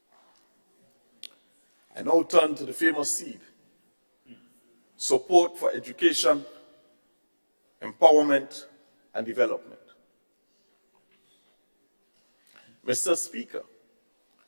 I now turn to the famous seed: support for education, empowerment, and development. Mr. Speaker,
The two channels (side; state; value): both; inverted; correlation -1.00